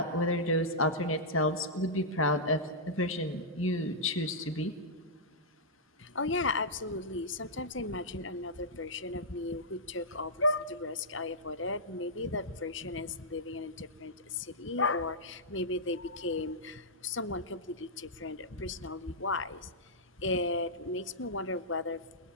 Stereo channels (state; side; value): normal; both; correlation -0.11